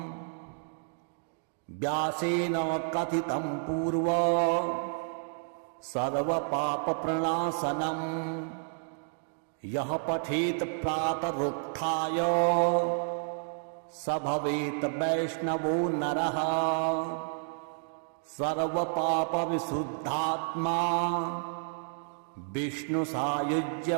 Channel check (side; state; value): left; silent; digital silence